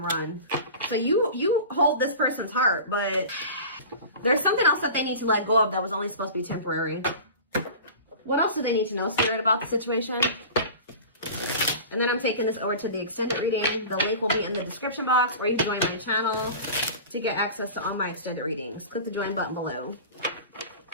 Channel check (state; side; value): inverted; both; correlation -0.36